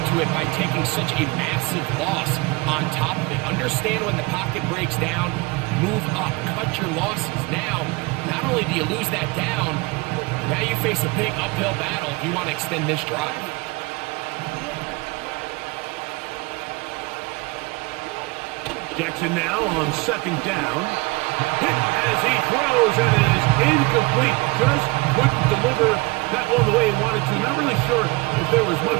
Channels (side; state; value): left; quieter; 25.1 dB